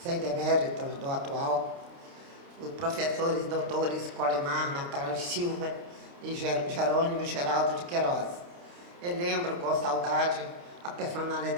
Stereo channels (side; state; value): left; late; 29 ms